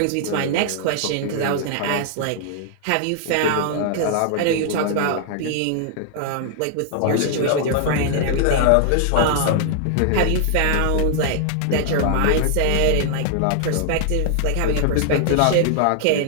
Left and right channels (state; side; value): different; both; correlation -0.01